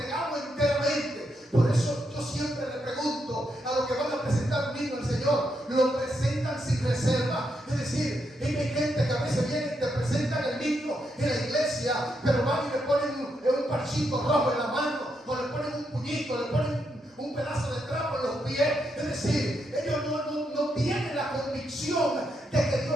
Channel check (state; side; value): normal; both; correlation 0.81